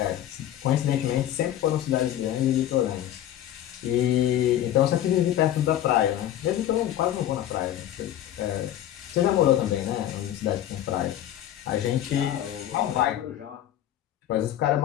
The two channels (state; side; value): quieter; right; 11.9 dB